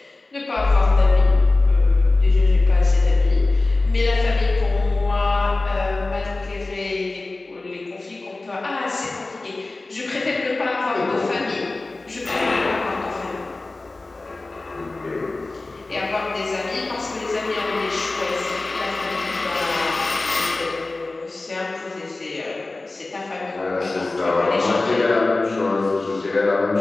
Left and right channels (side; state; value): right; quieter; 3.2 dB